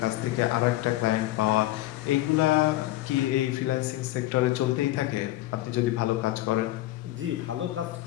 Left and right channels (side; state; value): right; quieter; 16.1 dB